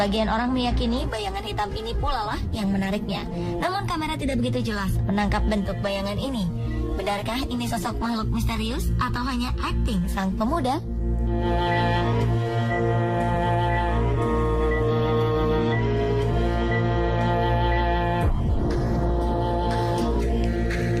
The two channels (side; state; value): both; identical; correlation 1.00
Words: orang meyakini bayangan hitam ini pula lah yang menariknya. Namun kamera tidak begitu jelas menangkap bentuk bayangan ini. Benarkah ini sosok makhluk misterius atau hanya akting sang pemuda?